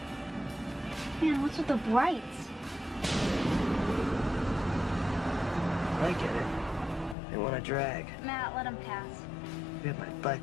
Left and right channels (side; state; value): right; drops out; at 7.2 s